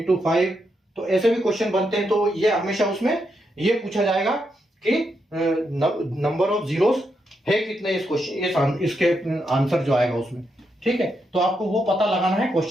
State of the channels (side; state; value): both; normal; correlation 0.82